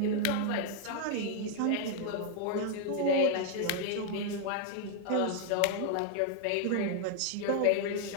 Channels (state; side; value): different; both; correlation 0.00